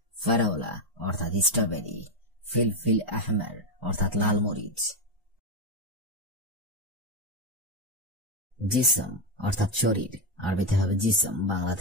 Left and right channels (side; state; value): both; normal; correlation 0.07